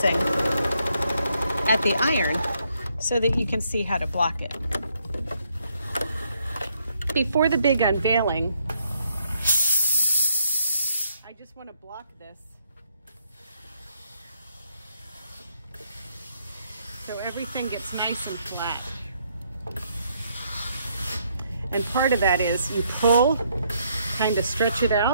at the iron so that you can see how to block it. Before the big unveiling, I just want to block this so everything gets nice and flat. And part of that is you pull, kind of stretch it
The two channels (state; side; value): inverted; both; correlation -0.73